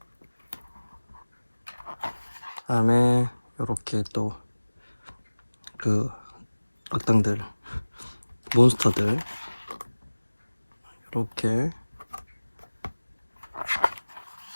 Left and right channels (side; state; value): both; inverted; correlation -1.00